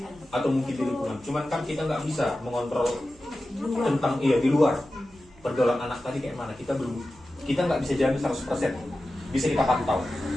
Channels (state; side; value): noise; right; hum, 27 dB below the sound